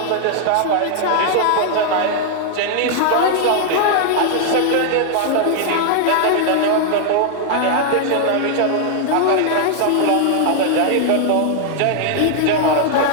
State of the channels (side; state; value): both; different; correlation 0.00